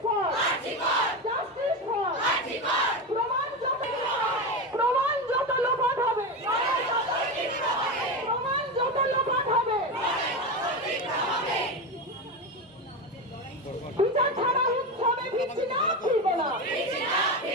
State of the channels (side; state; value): both; normal; correlation 0.18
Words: for, justice for. প্রমাণ যত লোপাট হবে, প্রমাণ যত লোপাট হবে, বিচার ছাড়া উৎসবে ফিরছি না, ফিরবো না,